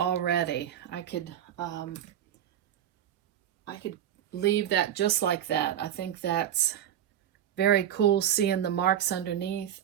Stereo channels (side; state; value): left; quieter; 10.5 dB